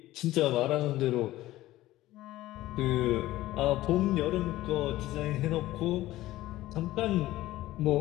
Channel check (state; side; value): quieter; right; 16.0 dB